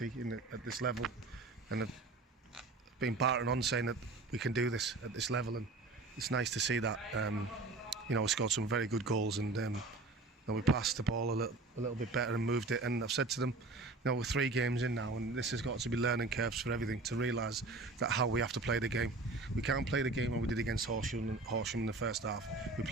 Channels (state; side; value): quieter; left; 3.4 dB